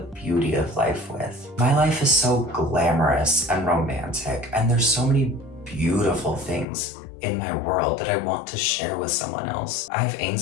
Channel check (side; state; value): right; drops out; at 6.7 s